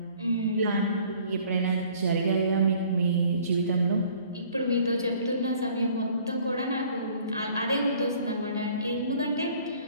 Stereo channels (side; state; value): both; inverted; correlation -0.55